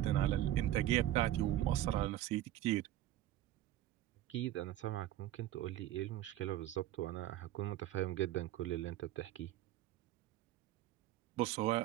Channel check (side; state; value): left; quieter; 13.8 dB